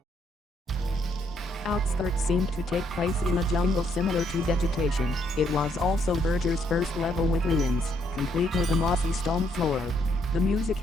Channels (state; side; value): normal; both; correlation 0.72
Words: Outskirts seemed to take place in a jungle similar to Vegetation. It was also Verger's first level with ruins, complete with a mossy stone floor. The music